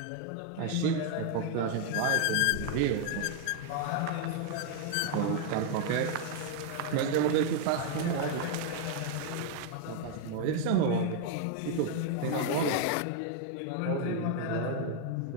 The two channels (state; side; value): different; both; correlation 0.00